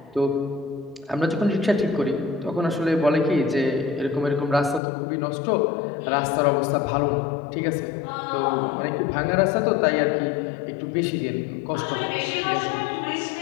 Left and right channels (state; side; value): drops out; right; at 4.8 s